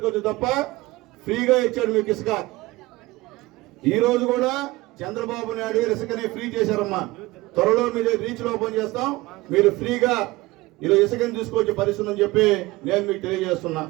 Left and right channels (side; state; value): left; quieter; 20.1 dB